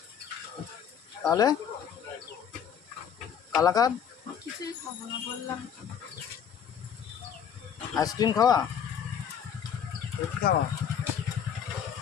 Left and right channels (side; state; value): right; quieter; 8.2 dB